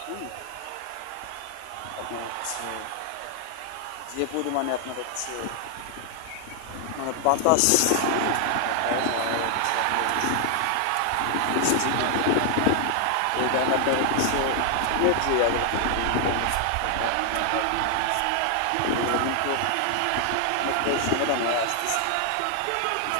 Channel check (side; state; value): both; different; correlation 0.00